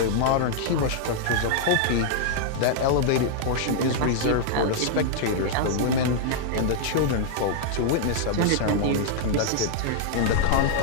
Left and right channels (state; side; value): different; both; correlation -0.01